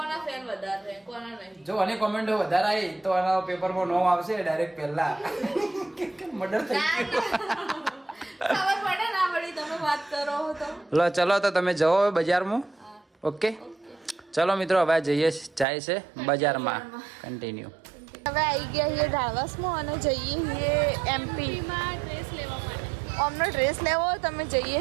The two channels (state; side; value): drops out; left; at 15.7 s